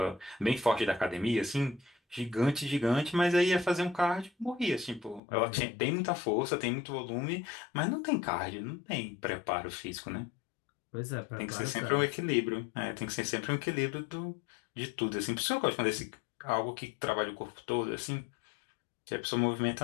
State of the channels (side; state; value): right; drops out; at 5.2 s